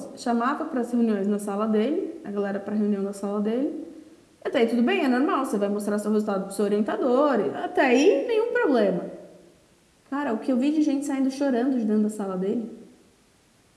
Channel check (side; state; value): both; identical; correlation 1.00